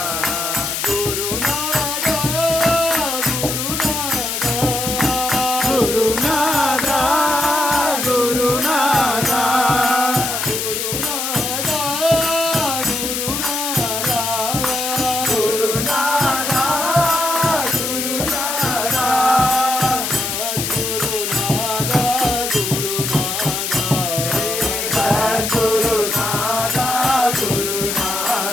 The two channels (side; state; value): left; noise; hiss, 2 dB below the sound